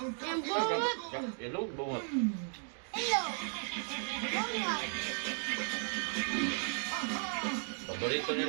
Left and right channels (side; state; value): left; silent; 54 dB below the other